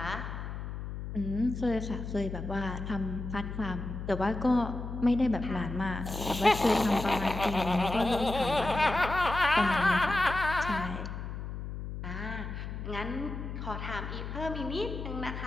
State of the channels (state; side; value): noise; left; hum, 7 dB below the sound